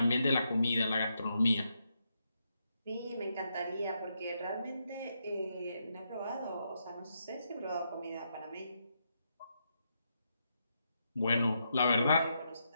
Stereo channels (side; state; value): both; inverted; correlation -0.81